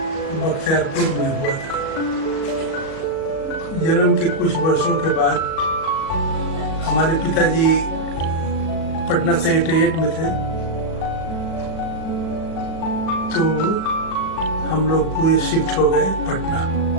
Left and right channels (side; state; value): right; late; 37 ms